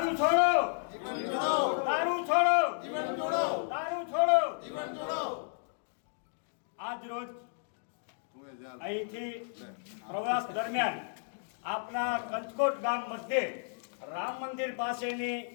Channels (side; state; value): right; silent; digital silence